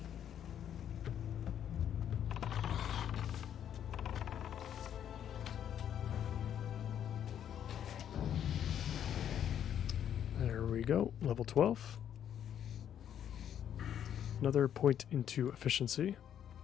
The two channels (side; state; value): right; quieter; 9.6 dB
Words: There we go, level 12. Another point into efficiency.